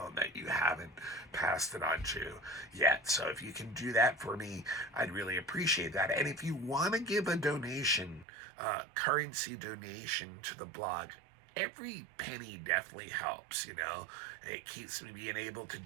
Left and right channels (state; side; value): drops out; left; at 8.2 s